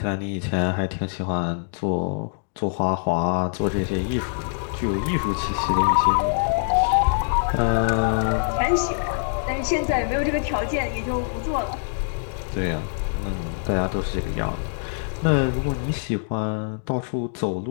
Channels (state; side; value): silent; right; digital silence